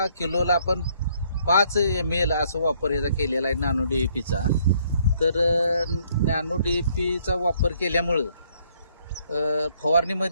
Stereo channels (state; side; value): inverted; both; correlation -0.67